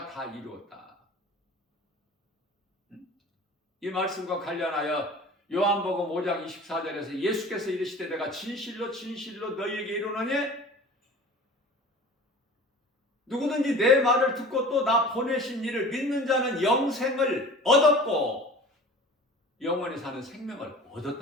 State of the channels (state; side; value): normal; both; correlation 0.41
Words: 다 이루었다. 이 말씀과 관련하여 요한복음 5장 24절에서 예수께서 이르시되, 내가 진실로 너희에게 이르노니 누구든지 내 말을 듣고 또 나 보내신 이를 믿는 자는 영생을 얻었고 영원히 사는 생명을